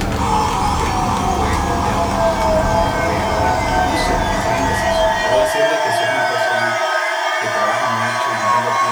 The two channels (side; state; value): right; noise; hiss, 27 dB below the sound